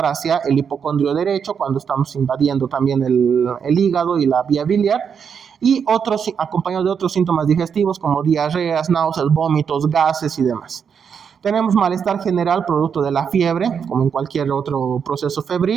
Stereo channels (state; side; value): quieter; left; 7.0 dB